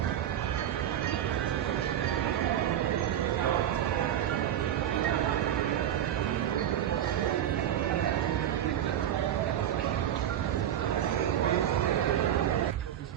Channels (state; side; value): quieter; left; 10.9 dB